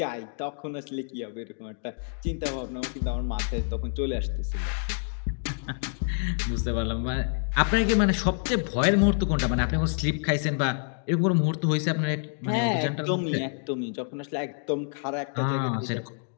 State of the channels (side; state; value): right; silent; 60 dB below the other